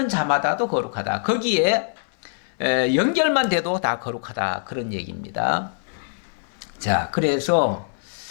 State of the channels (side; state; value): right; silent; 63 dB below the other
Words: 자마다도 거룩하다. 거기에 연결만 돼도 다 거룩하다, 그런 얘기입니다. 자, 그래서